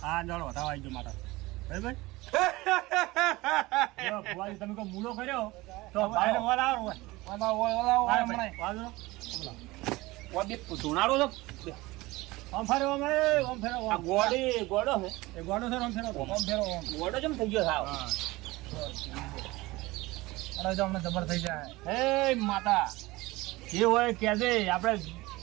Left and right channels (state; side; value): quieter; left; 20.6 dB